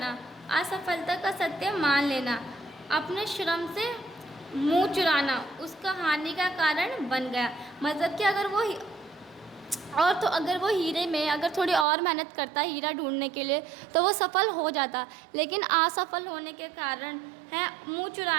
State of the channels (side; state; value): left; drops out; at 11.9 s